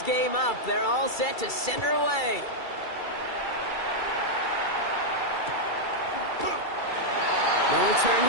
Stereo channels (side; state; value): right; late; 2.3 ms